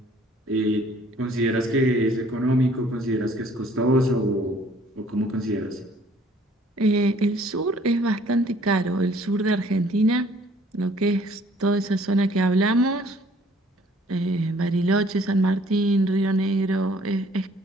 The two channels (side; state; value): both; normal; correlation 0.58